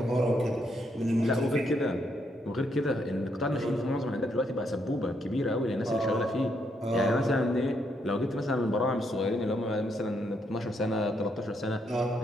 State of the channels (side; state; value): both; normal; correlation 0.76